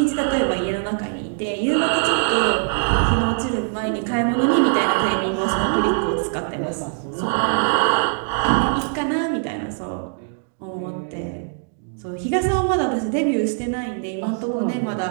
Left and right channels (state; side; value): silent; left; 64 dB below the other